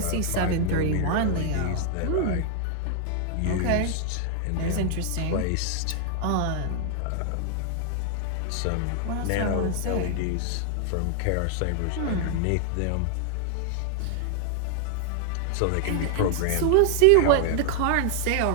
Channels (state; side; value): different; both; correlation 0.00